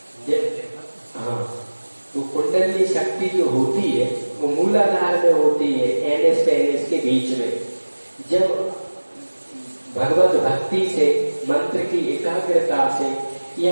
हाँ, तो कुंडली शक्ति जो होती है वो मूलाधार में होती है, एनएस पेनिस के बीच में। जब भगवत भक्ति से, मंत्र की एकाग्रता से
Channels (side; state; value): both; inverted; correlation -1.00